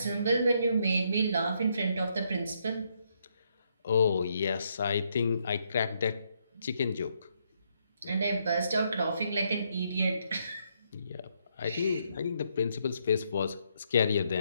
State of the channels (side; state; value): both; inverted; correlation -0.75